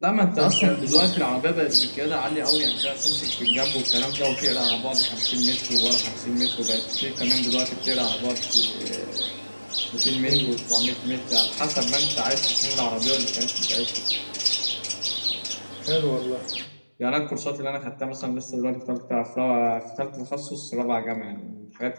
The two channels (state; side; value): inverted; both; correlation -1.00